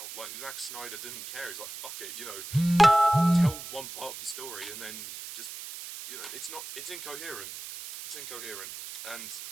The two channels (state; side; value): noise; right; hiss, 10 dB below the sound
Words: Like, Zack Snyder didn't care. He's like, fuck it, you know, tell one part of the story, and then just, you know, it's incoherent. It's incoherent, and